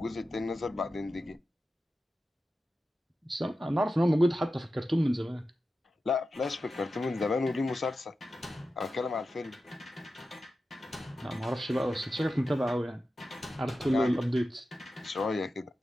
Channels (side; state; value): both; normal; correlation 0.92